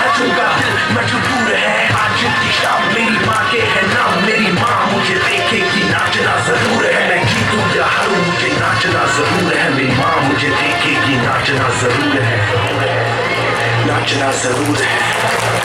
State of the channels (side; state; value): both; identical; correlation 1.00